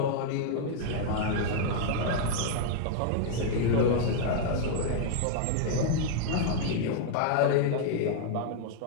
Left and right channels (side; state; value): both; different; correlation -0.01